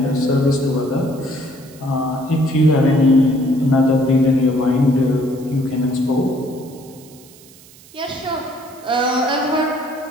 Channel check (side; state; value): right; noise; hiss, 23 dB below the sound